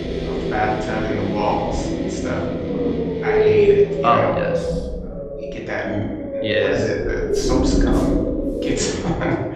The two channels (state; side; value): identical; both; correlation 1.00